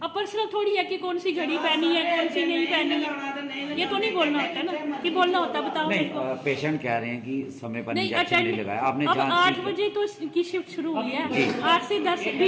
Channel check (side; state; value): both; identical; correlation 1.00